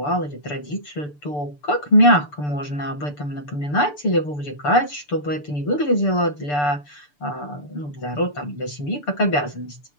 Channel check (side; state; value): right; late; 6.8 ms